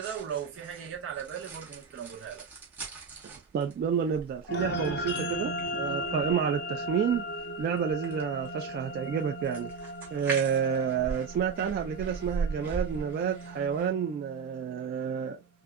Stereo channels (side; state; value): left; quieter; 5.8 dB